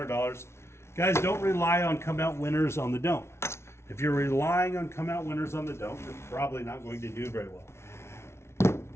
Guys, don't rely on come out winners on the don't. If you're relying on come out winners on the don't, you're probably not going to do very well.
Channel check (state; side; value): late; right; 0.13 ms